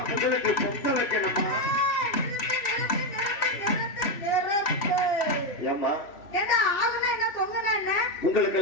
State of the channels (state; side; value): late; right; 3.1 ms